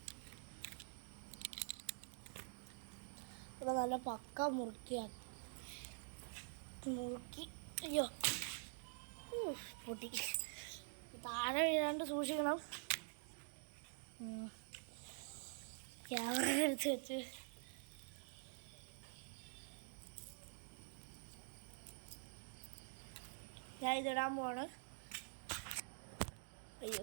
ഇവിടെ നല്ല പക്ക മുറുക്കി അയ്യോ പൊട്ടി താഴെ വീഴാണ്ട് സൂക്ഷിക്കണം ക്യാമറ എടുത്ത് വെച്ച് ഞാൻ ഇതിടാൻ പോവാണ്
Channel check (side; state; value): left; silent; digital silence